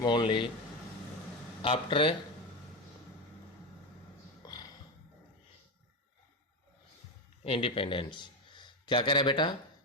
only after independence. क्या कह रहा है बेटा,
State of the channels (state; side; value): normal; both; correlation 0.14